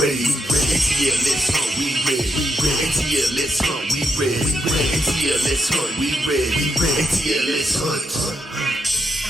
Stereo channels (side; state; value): both; normal; correlation 0.80